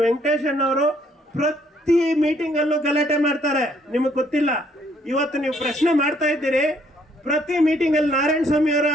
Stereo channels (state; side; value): normal; both; correlation 0.66